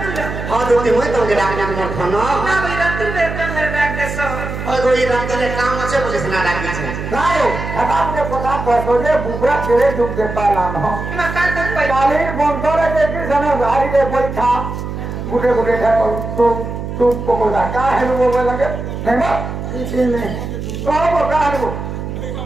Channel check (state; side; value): noise; right; hum, 6 dB below the sound